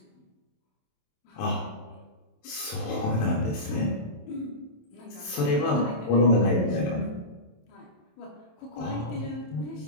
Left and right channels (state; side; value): late; right; 27 ms